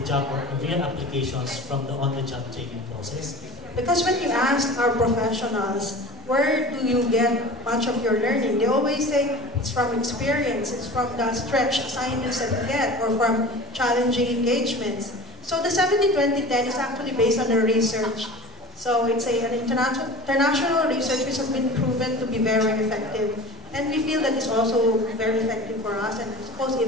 job or real applications from the on-the-job training process? Because when you ask our professionals, where do you get much of your learning? They always say it's from experience, it's from the stretch assignments that you get, or from challenging engagements. So the 70-20-10 is actually based on the research. So it's an international research which has been proven to be very effective. And we feel that it's also very effective for us, and I suppose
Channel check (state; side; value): normal; both; correlation 0.38